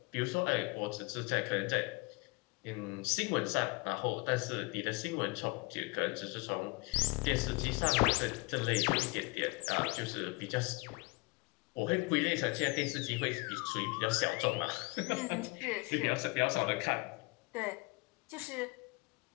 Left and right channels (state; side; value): quieter; right; 27.3 dB